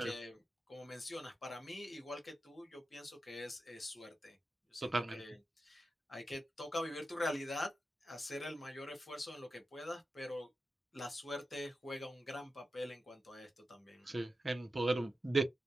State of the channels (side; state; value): both; normal; correlation 0.91